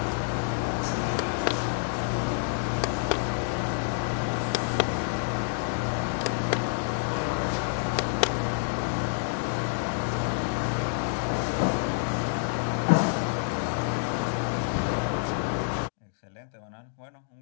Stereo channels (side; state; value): right; silent; digital silence